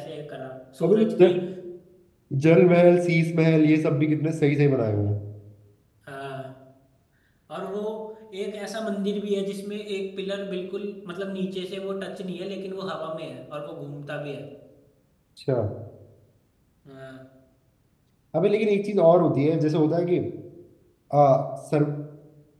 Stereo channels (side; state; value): both; identical; correlation 1.00